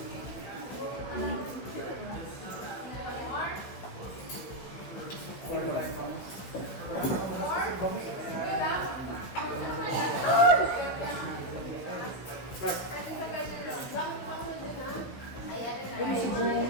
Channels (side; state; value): right; late; 16 ms